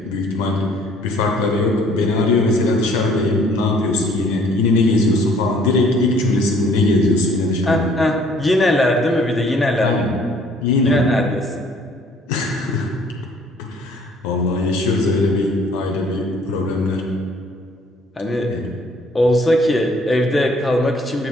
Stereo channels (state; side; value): normal; both; correlation 0.58